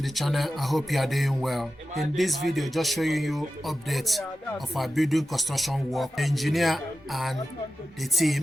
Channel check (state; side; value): normal; both; correlation 0.92